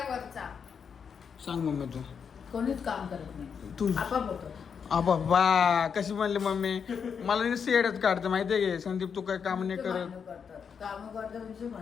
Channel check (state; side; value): quieter; right; 6.7 dB